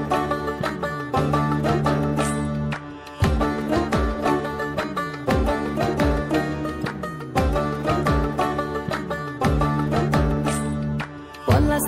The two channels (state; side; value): identical; both; correlation 1.00